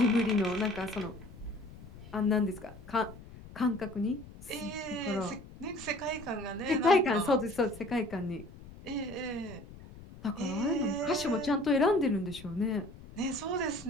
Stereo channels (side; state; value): left; noise; rumble, 17 dB below the sound